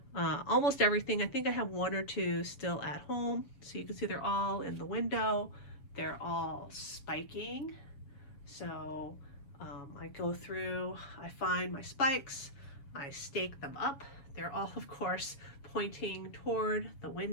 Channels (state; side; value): late; right; 7.2 ms